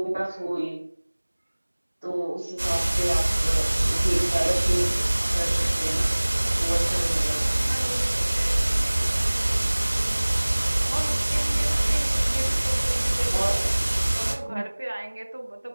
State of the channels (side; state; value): both; inverted; correlation -1.00